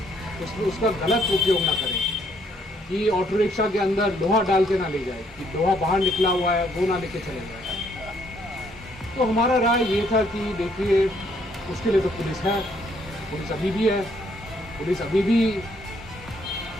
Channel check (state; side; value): normal; both; correlation 0.68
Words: उसका गलत उपयोग ना करें, कि ऑटो रिक्शा के अंदर लोहा डाल के ना ले जाए, कि लोहा बाहर निकला हुआ है वो ना लेके चले जाए। तो हमारा राय ये था कि देखिए, उसके लिए तो पुलिस है, पुलिस अभी भी है, पुलिस अभी भी